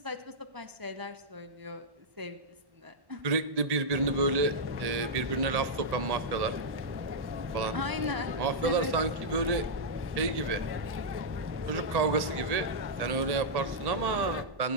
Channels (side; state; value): left; late; 1.1 ms